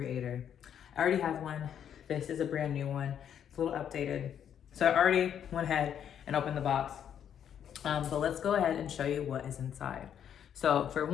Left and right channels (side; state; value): right; quieter; 9.1 dB